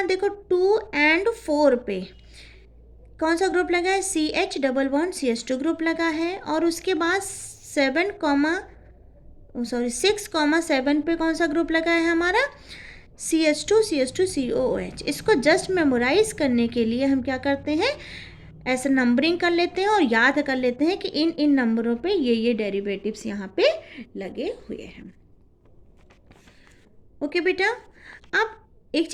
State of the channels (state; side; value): identical; both; correlation 1.00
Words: देखो 2 और 4 पे कौन सा ग्रुप लगा है, CH double bond CH2 group लगा है, और उसके बाद 6 7 पे कौन सा ग्रुप लगा है हमारा, CH2 COOH। इसको जस्ट मेमोराइज करने के लिए हम क्या करते हैं, ऐसे नंबरिंग कर लेते हैं और याद कर लेते हैं कि इन इन नंबरों पे ये डेरिवेटिव्स यहाँ पे लगे हुए हैं। ओके बेटा, अब एक